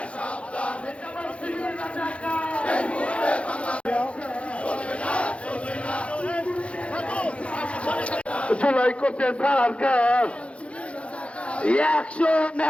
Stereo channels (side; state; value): right; late; 0.061 ms